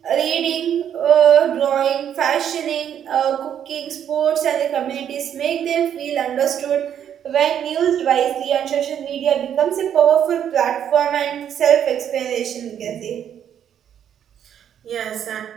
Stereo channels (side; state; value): left; quieter; 9.4 dB